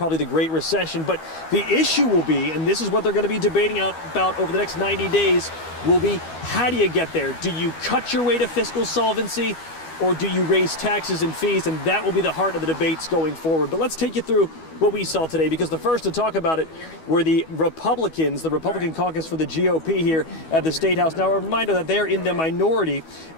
the Great Recession. But the issue will be, and this is what they're going to be debating about over the next 90 days, will be how do you get there? Do you cut your way to fiscal solvency? Or do you raise taxes and fees? And that will be the heart of the debates going forward. But let's take you through what we saw today, because the first to talk about it were the Republicans, the Republican caucus for the GOP here at the State House. Now, a reminder that they're in the minority,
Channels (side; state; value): right; late; 12 ms